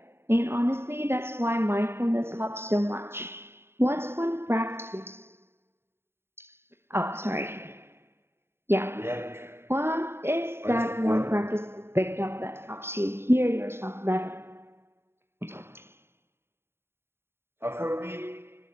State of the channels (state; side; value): late; left; 0.11 ms